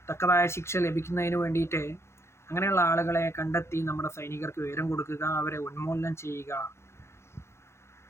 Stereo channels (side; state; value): right; late; 0.13 ms